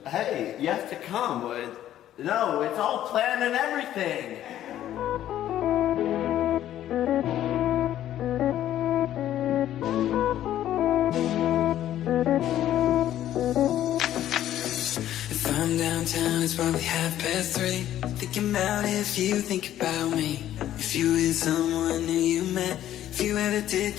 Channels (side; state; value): right; quieter; 12.2 dB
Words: Hey, you have to come. No, it's all planned and everything. If I'm downtown, it's probably 3:30. Thinking about if you think about me. If you with someone new you met. If you ever did